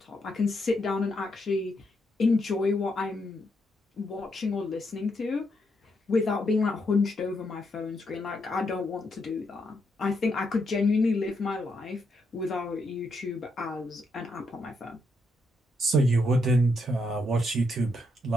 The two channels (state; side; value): normal; both; correlation 0.78